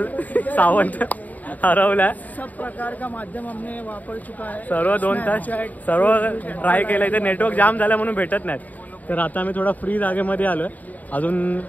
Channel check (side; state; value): right; late; 0.077 ms